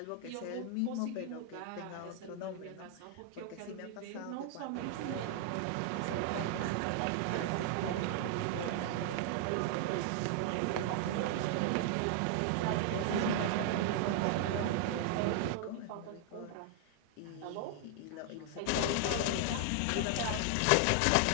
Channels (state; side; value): different; both; correlation 0.00